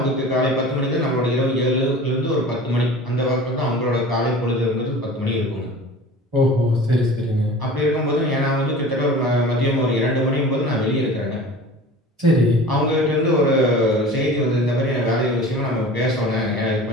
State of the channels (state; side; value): normal; both; correlation 0.39